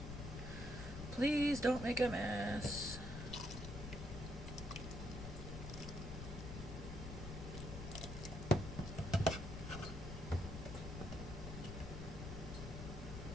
Please don't make a mess.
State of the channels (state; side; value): noise; left; rumble, 7 dB below the sound